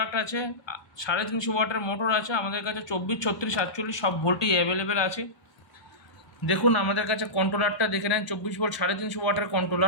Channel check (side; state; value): right; late; 1.0 ms